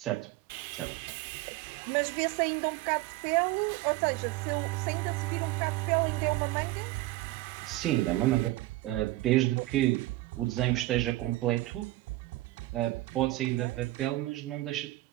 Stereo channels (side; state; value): left; quieter; 18.2 dB